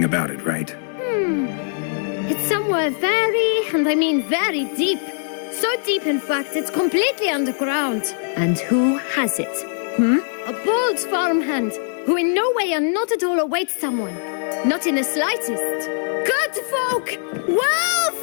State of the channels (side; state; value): right; silent; 65 dB below the other